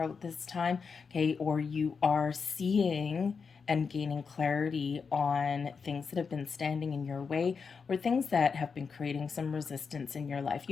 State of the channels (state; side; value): quieter; right; 5.5 dB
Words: this time, okay? Or you are seeing and gaining clarity on things that have been standing in your way, or things that have been creating some resistance in your life.